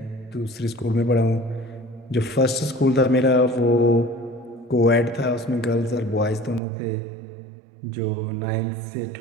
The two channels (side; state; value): left; drops out; at 6.6 s